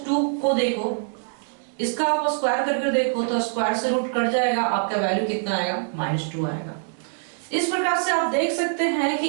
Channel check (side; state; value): left; silent; digital silence